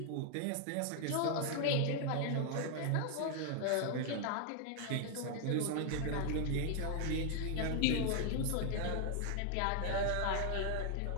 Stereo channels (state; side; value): different; both; correlation 0.00